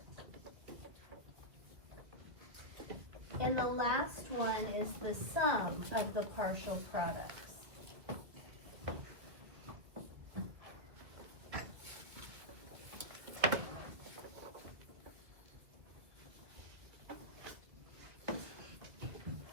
And the last one is the sum of the partial products.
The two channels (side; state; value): left; late; 2.1 ms